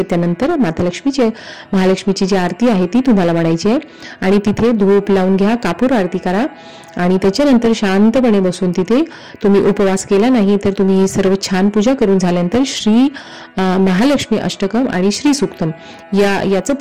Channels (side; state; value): both; identical; correlation 1.00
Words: त्यानंतर माता लक्ष्मीची महालक्ष्मीची जी आरती आहे ती तुम्हाला म्हणायची आहे. आणि तिथे धूप लावून घ्या, कापूर आरती करा आणि त्याच्यानंतर शांतपणे बसून तिथे तुम्ही उपवास केला नाही तर तुम्ही सर्व छान पूजा करून झाल्यानंतर श्री महालक्ष्मी अष्टकम आणि श्री सूक्तम याचं